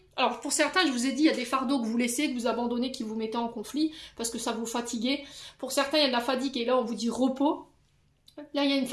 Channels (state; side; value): identical; both; correlation 1.00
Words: Alors pour certains, je vous ai dit, il y a des fardeaux que vous laissez, que vous abandonnez, qui vous mettez en conflit, parce que ça vous fatigue. Pour certains, il y a de la fatigue et là, on vous dit repos. Là, il y a une